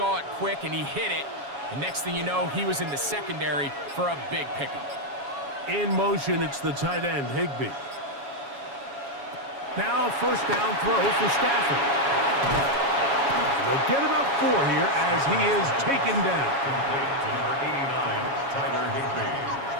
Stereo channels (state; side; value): late; left; 7.2 ms